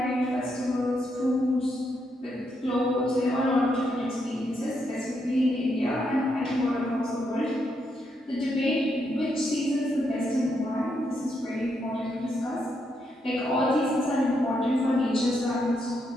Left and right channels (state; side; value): normal; both; correlation 0.79